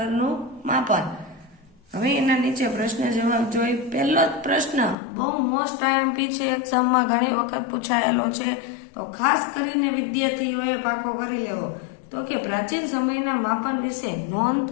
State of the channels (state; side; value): drops out; right; at 5.0 s